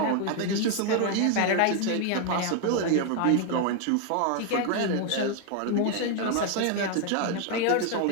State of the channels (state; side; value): different; both; correlation 0.01